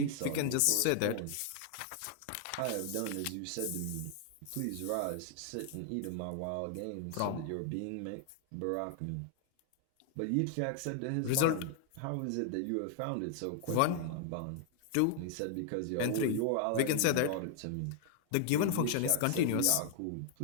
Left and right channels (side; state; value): both; different; correlation 0.00